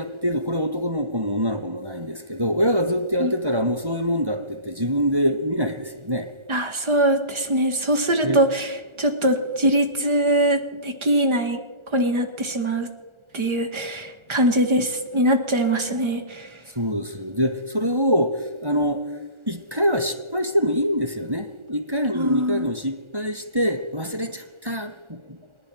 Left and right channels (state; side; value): late; left; 1.4 ms